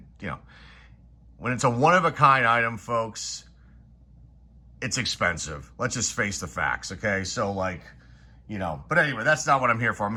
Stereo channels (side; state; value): both; identical; correlation 1.00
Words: when it's a one-of-a-kind item, folks, it's expensive. Let's just face the facts, okay? So but anyway, that's not what I'm here for. I'm